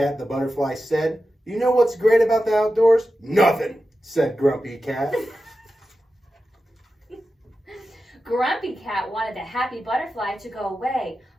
the butterfly said. "You know what's great about the outdoors?" "Nothing," said Grumpy Cat. Grumpy Cat wanted the happy butterfly to go away,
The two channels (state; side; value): normal; both; correlation 0.92